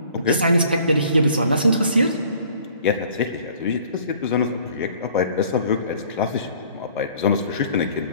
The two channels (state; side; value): inverted; both; correlation -0.54